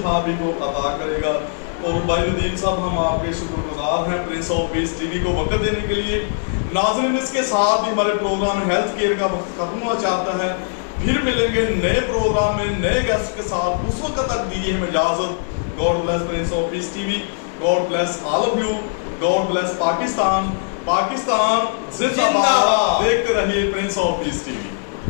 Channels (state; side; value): silent; right; digital silence